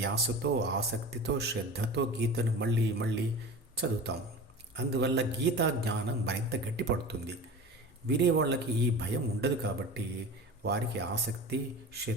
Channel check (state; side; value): normal; both; correlation 0.35